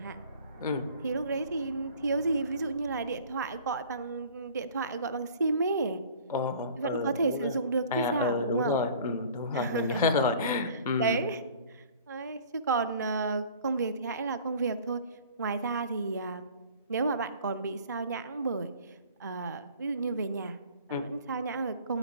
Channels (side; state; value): both; inverted; correlation -0.47